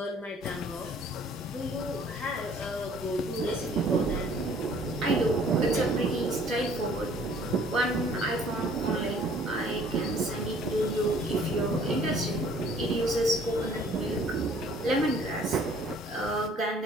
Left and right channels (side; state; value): both; normal; correlation 0.56